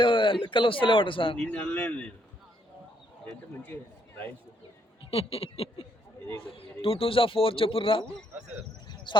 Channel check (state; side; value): normal; both; correlation 0.72